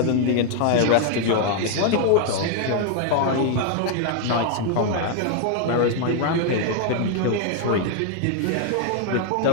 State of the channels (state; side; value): different; both; correlation 0.00